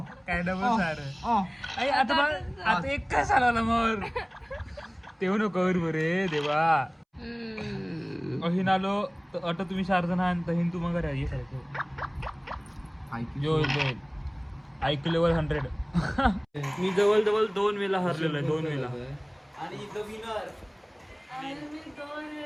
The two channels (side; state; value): both; identical; correlation 1.00